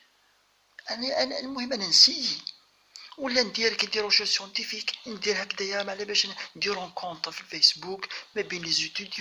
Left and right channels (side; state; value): both; identical; correlation 1.00